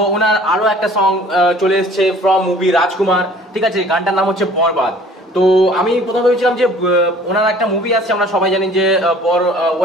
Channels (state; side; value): normal; both; correlation 0.51